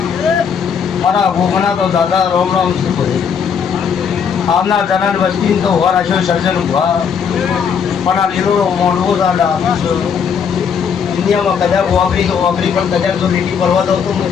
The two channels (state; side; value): quieter; right; 6.9 dB